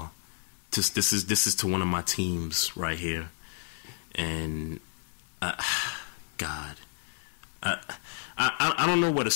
This is to one of my teams right here, and God, I don't know where to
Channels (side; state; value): right; silent; 57 dB below the other